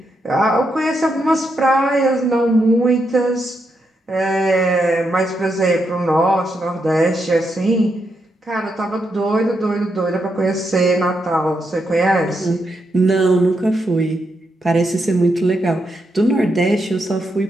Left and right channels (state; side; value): normal; both; correlation 0.82